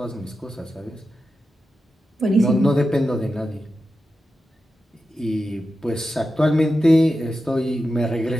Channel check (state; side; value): normal; both; correlation 0.91